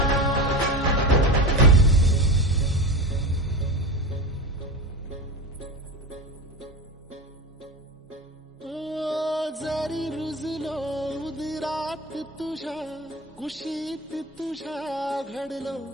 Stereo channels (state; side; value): normal; both; correlation 0.24